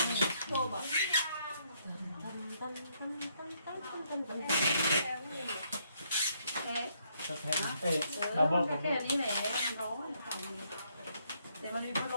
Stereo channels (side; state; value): both; inverted; correlation -0.72